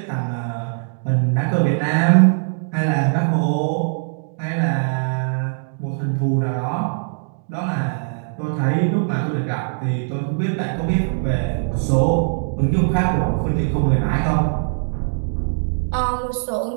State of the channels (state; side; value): silent; left; digital silence